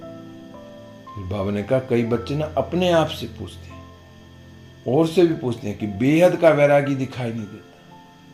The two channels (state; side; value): identical; both; correlation 1.00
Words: बाबा ने कहा कई बच्चे ना अपने आप से पूछते हैं और से भी पूछते हैं कि बेहद का वैरागी दिखाई नहीं देता।